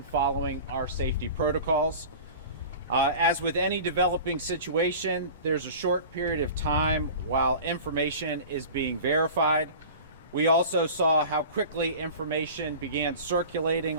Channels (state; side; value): inverted; both; correlation -0.37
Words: following our safety protocols. As with any developing situation, there's a short period of time while information is being verified. We also saw how quickly information began circulating